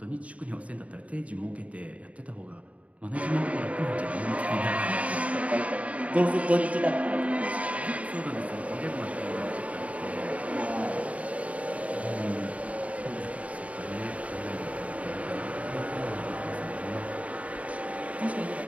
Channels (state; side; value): late; left; 0.067 ms